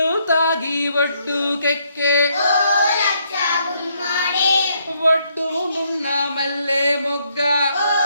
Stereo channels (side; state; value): both; inverted; correlation -0.72